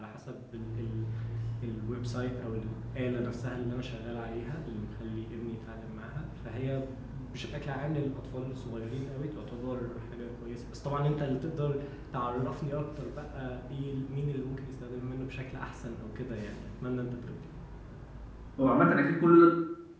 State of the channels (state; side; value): identical; both; correlation 1.00